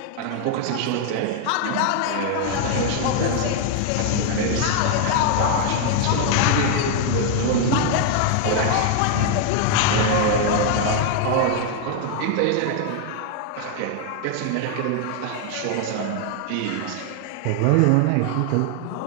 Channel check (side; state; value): both; different; correlation 0.00